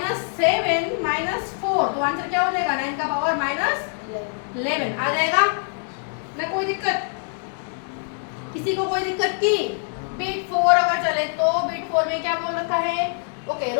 - 4, तो आंसर क्या हो जाएगा? 9 का पावर -11 आ जाएगा ना? कोई दिक्कत? किसी को कोई दिक्कत की? बीट 4 अगर चले तो बीट 4 में क्या बोल रखा है? ओके,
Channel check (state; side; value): silent; right; 57 dB below the other